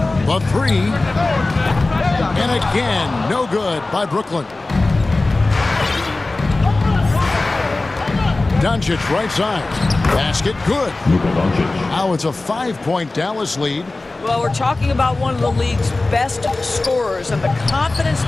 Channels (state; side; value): quieter; right; 3.1 dB